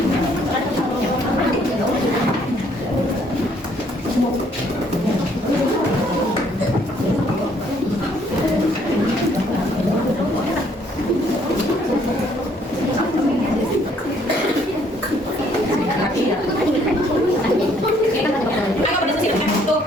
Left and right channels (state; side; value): normal; both; correlation 0.65